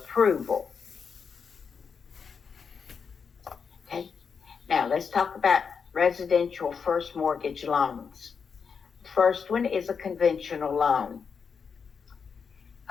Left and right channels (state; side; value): quieter; right; 6.0 dB